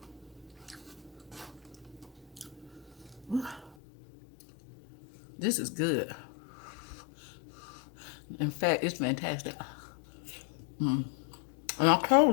This is good. In fact, it's fantastic. And I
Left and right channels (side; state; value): right; drops out; at 3.8 s